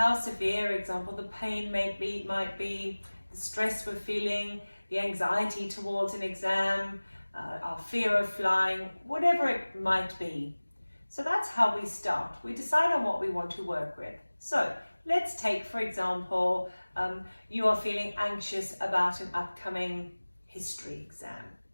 severe, example, the pain might be, the stress we're feeling, the anxiety towards an exam, our fear of flying, whatever it might be. So that's how we start. We decide on what we want to work with. So let's take, for example, you are feeling anxious about an upcoming history exam.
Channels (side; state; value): both; inverted; correlation -1.00